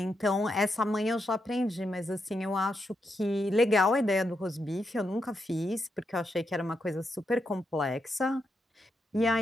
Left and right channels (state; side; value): normal; both; correlation 0.83